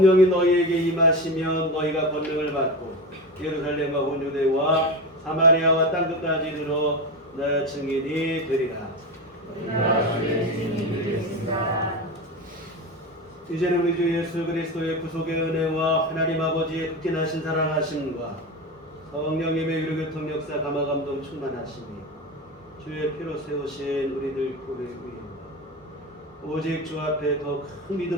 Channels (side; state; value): both; normal; correlation 0.22